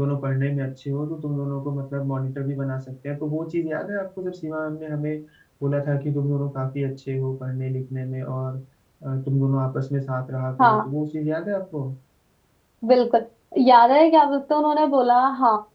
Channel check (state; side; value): identical; both; correlation 1.00